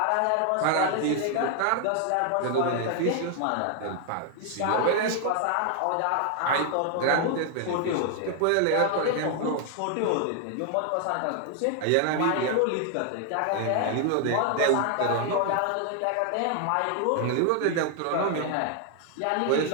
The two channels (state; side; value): different; both; correlation 0.00